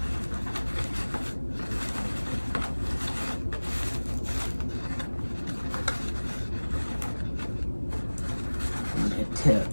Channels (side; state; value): both; inverted; correlation -1.00